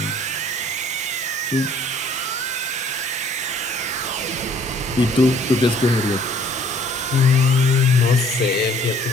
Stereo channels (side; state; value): both; normal; correlation 0.57